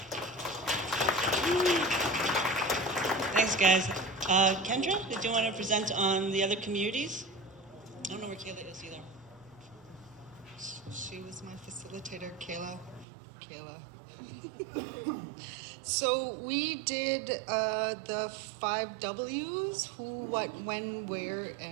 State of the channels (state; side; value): drops out; left; at 13.1 s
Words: Thanks, guys. Kendra, did you want to present on the other communities? I don't know where Kayla is either. She was my facilitator, Kayla. So we did the 5 W's: who, what, when, where,